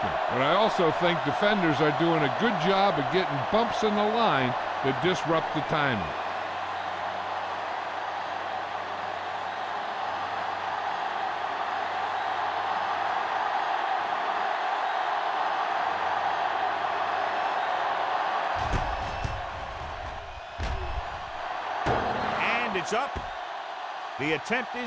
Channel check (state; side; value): identical; both; correlation 1.00